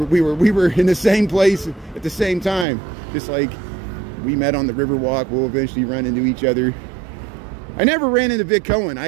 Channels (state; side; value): drops out; left; at 2.7 s